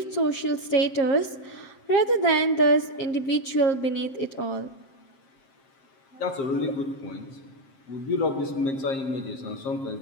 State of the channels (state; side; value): late; right; 7.5 ms